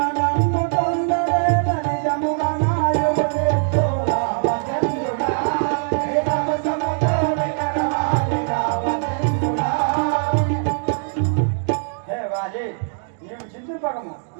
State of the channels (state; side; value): silent; left; digital silence